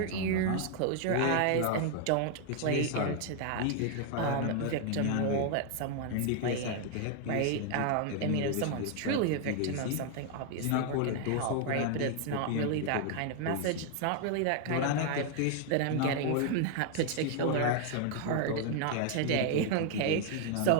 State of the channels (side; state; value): both; different; correlation 0.00